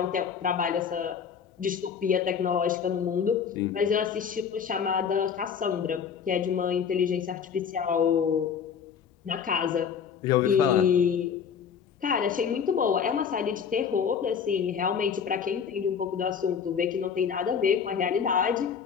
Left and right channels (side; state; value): right; quieter; 7.1 dB